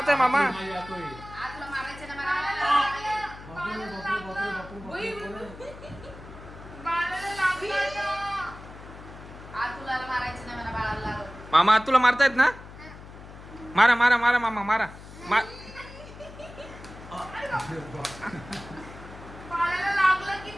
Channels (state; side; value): noise; left; hum, 16 dB below the sound